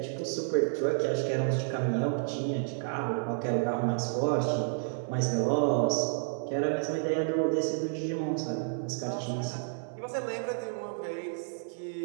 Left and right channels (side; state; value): left; silent; digital silence